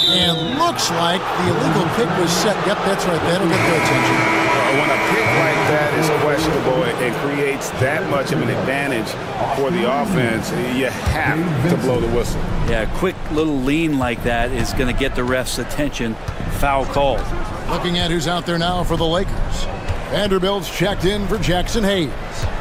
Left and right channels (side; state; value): both; identical; correlation 1.00